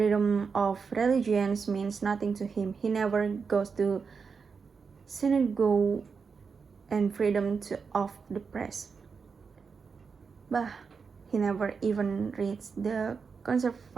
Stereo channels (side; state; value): left; quieter; 5.4 dB